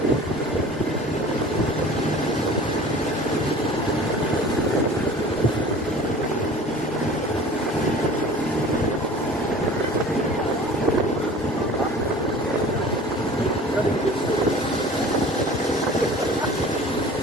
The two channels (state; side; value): normal; both; correlation 0.43